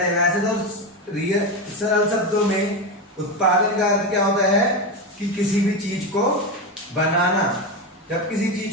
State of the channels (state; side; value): normal; both; correlation 0.16